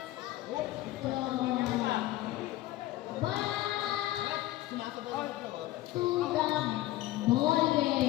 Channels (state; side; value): quieter; right; 16.1 dB